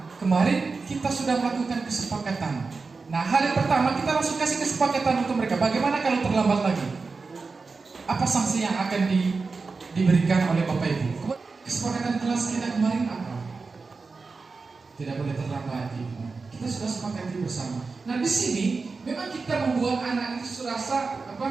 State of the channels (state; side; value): quieter; left; 4.3 dB